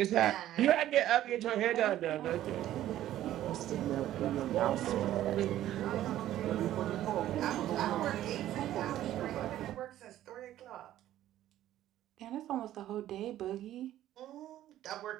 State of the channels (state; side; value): quieter; left; 13.1 dB